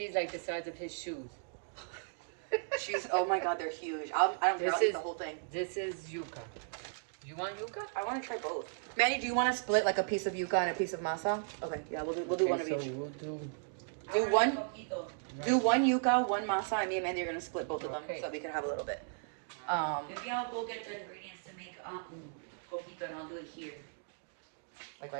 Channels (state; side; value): silent; left; digital silence